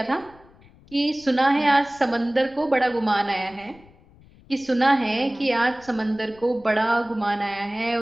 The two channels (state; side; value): noise; left; rumble, 26 dB below the sound